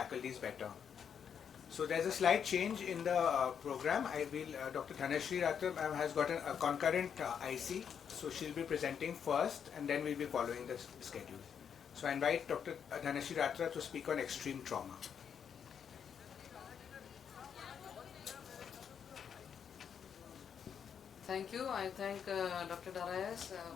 these better. So there's a slight change in the program. Dr. Dhanashree Ratra has got a concurrent IC, so she'll be presenting first and then we'll be following the schedule. So I invite Dr. Dhanashree Ratra to speak on extreme trauma. Thank you. I thank Dr. Daraius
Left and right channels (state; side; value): quieter; right; 7.7 dB